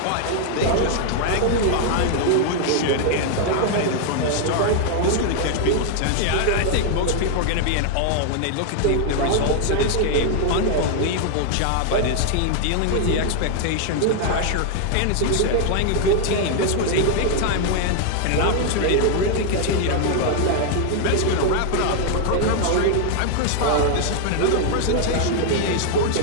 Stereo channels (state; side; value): different; both; correlation 0.00